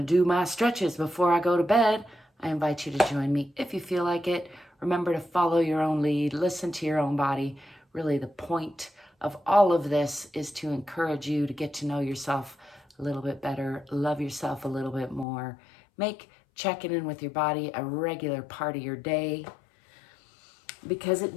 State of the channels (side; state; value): right; drops out; at 15.2 s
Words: do my stretches before I go to bed. I invite you to join me if you feel like it. Remember to follow your own lead, listen to your own body. Really, the point of all of this is to encourage you to get to know yourself a little bit better, love yourself a little bit more, make checking in with your body a regular part of your day, because it